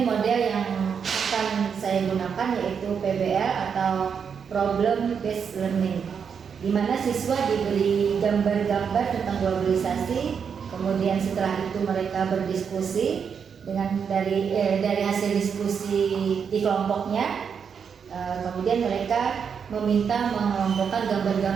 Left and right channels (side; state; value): left; quieter; 6.8 dB